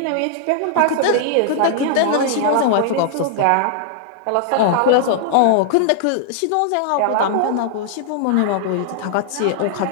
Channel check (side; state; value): both; different; correlation -0.01